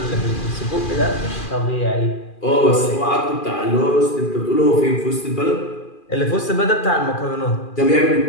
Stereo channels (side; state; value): right; late; 2.4 ms